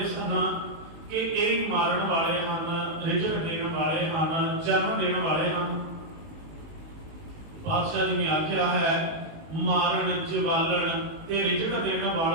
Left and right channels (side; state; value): left; late; 19 ms